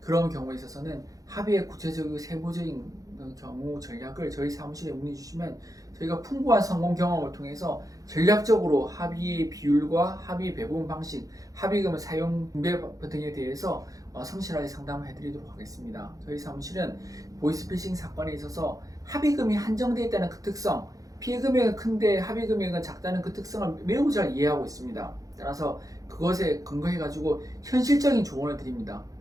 경우에 있어서는 합의의 구체적이고 세부적인 경우 전략을 저희 사무실에 문의 주시면 저희가 풍부한 성공 경험을 통해서 전략적으로 합의의 비율과 합의 배분 방식, 합의금의 사용 분배 등에 대해서 성실하게 상담을 해드리도록 하겠습니다. 저희 사무실은 보이스피싱 사건에 있어서 합의금이 한정되어 있다는 그 특성, 피해 금액은 큰데 합의 금액은 작다는 그 특성을 매우 잘 이해하고 있습니다. 따라서 그것에 근거해가지고 현실적인 조언을 드립니다.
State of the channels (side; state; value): left; late; 0.17 ms